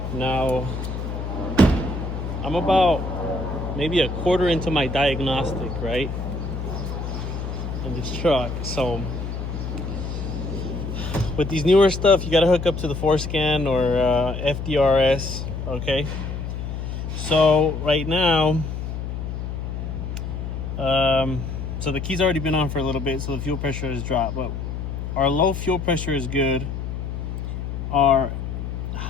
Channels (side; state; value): left; noise; hum, 5 dB below the sound